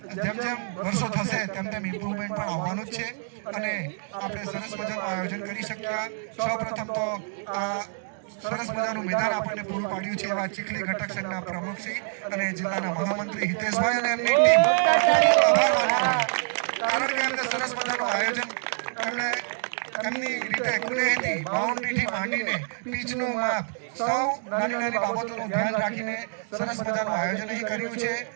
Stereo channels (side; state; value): left; silent; digital silence